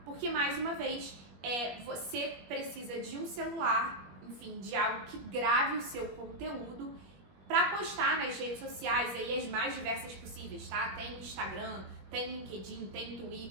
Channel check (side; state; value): left; late; 21 ms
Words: porque mais uma vez, você precisa de um celular, enfim, de algo que grave o seu conteúdo para postar nas redes sociais, aí as mais diversas possíveis, tá? Tem Instagram, tem LinkedIn, tem